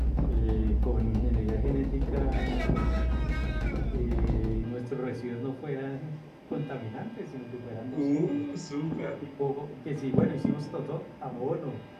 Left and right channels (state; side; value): identical; both; correlation 1.00